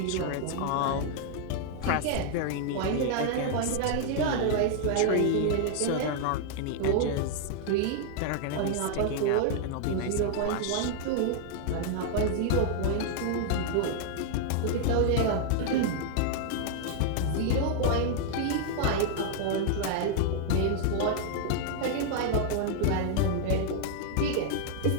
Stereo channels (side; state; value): both; different; correlation 0.00